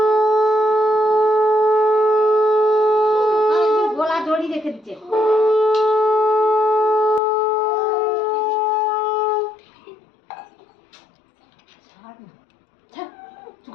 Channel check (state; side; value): drops out; right; at 7.2 s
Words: গোলা জড়ি রেখে দিচ্ছে।